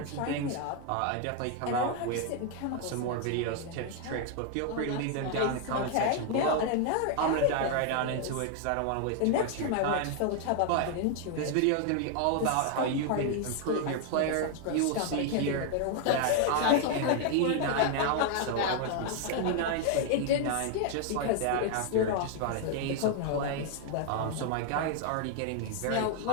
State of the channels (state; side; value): different; both; correlation 0.00